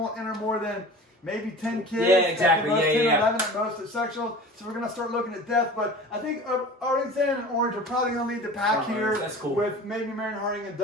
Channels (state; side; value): normal; both; correlation 0.38